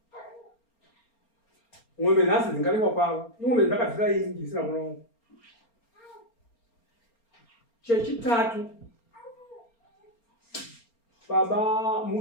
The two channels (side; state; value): right; late; 4.3 ms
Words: mwombe nhasi dzingarekwa kwavo imwombe dzakadzira ingi zvisina mwana wangu Chechitatu, baba